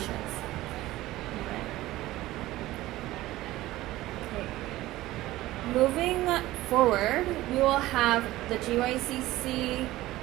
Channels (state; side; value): quieter; left; 16.8 dB